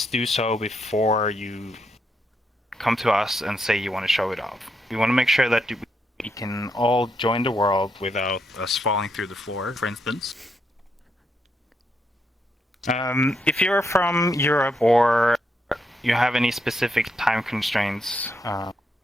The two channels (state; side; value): normal; both; correlation 0.80